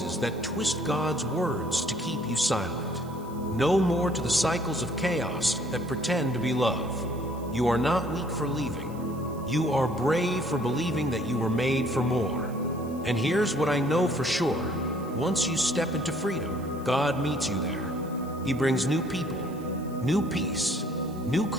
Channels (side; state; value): right; noise; hiss, 24 dB below the sound